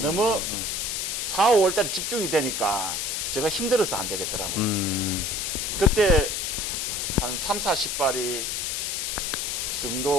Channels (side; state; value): left; noise; hiss, 1 dB below the sound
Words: 4, 5월 달에 집중이 되니까 제가 힘들어서 안 되겠더라고요. 그때 한 3, 40발이 그